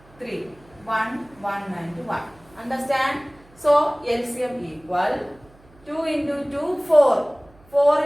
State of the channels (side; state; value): right; noise; hum, 27 dB below the sound